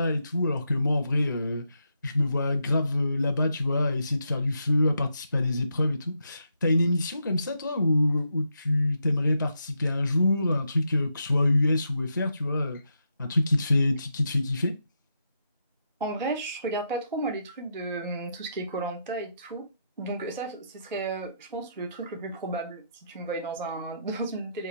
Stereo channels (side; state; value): both; inverted; correlation -0.82